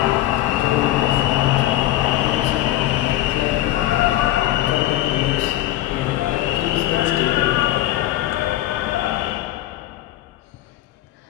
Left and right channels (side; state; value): right; quieter; 14.8 dB